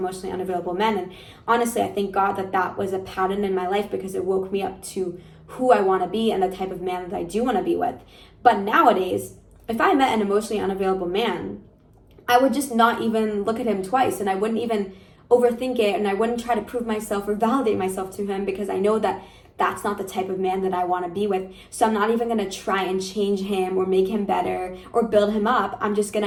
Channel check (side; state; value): both; identical; correlation 1.00